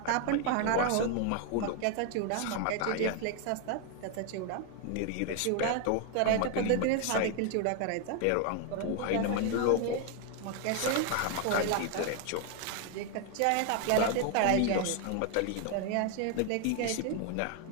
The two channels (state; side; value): different; both; correlation 0.00